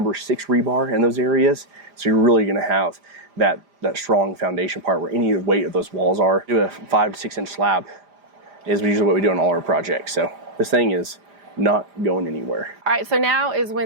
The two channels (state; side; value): late; left; 4.9 ms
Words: 6 rebar in those areas. So you're really gonna have that strong foundation part where any weight of those walls are. Do a 5 to 6 inch slab is usually what we do on all our projects. So this thing is not going anywhere. All right, so now is